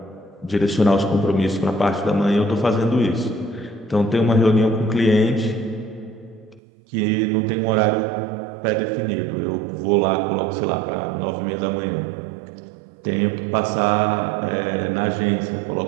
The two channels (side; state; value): left; drops out; at 6.6 s